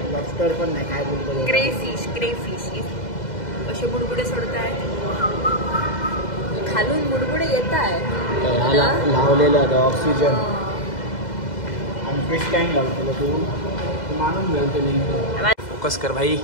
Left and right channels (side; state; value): right; late; 2.0 ms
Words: पण नाही. काय बोलतो क्रेफिश असे बुडबुडे सोडताय खालून, बुडबुडे येत आहे. लावलेलं आहे ऑक्सिजन आणि फिश टँक लावतो. तू मानून घ्याल फोकस कर भाई.